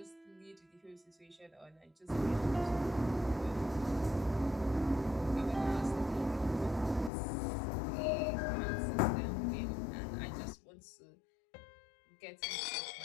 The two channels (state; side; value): drops out; right; at 7.1 s